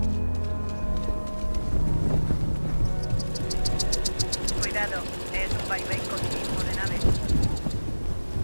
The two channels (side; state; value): both; inverted; correlation -1.00